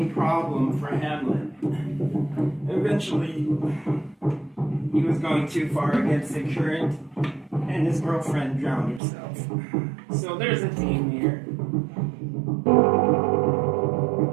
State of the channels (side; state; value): left; drops out; at 9.0 s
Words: problem for Hamlet. Eventually, he was going too far against the current, and his girlfriend drowned herself. So there's a theme here.